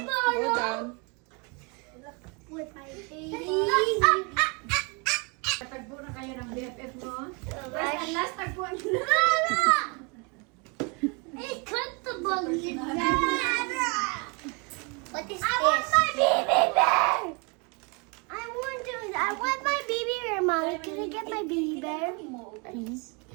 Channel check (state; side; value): quieter; left; 32.0 dB